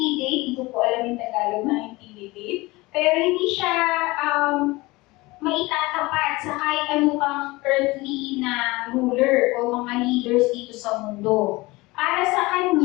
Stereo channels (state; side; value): quieter; right; 21.9 dB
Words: hindi ko po alam yung Tagalog na intimidate, pero hindi siya maitatapat sa kahit ano pang earthly na ruler o mga leaders dito sa mundo. Para sa